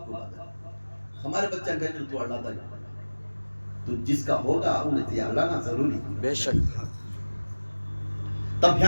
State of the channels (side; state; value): both; inverted; correlation -1.00